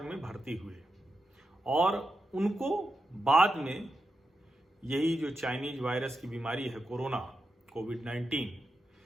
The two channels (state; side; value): normal; both; correlation 0.88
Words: में भर्ती हुए और उनको बाद में यही जो चाइनीज वायरस की बीमारी है, कोविड-19,